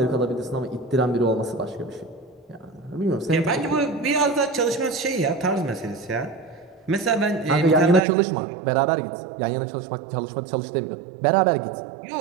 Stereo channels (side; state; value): left; drops out; at 8.0 s